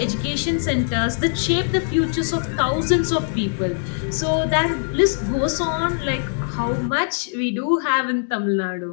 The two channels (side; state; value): right; silent; digital silence